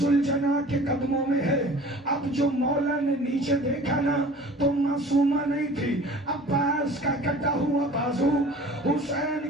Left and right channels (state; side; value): normal; both; correlation 0.45